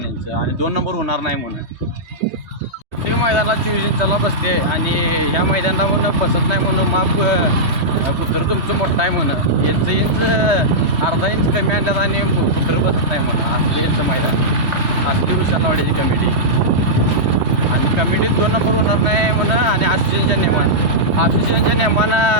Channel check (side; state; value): left; late; 3.2 ms